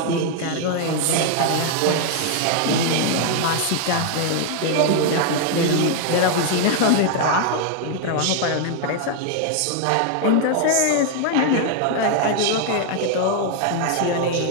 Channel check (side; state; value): both; different; correlation 0.00